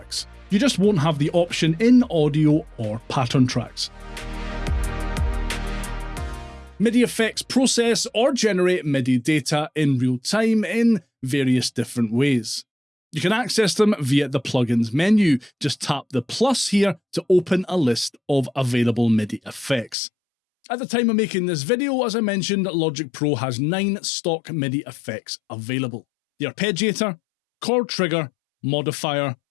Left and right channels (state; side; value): drops out; right; at 20.0 s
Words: You just won't have the option in audio or pattern tracks. MIDI effects process or generate MIDI data in real time in various different ways. You can access them via the plugins menu. Just tap the plus here to open a list of available MIDI effects. At the time of making this video, as I mentioned, Logic Pro has 9 stock MIDI effects available. The Arpeggiator, Chord Trigger, Modifier,